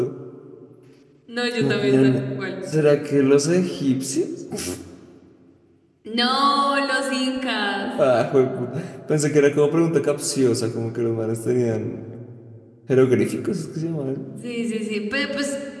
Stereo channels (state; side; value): identical; both; correlation 1.00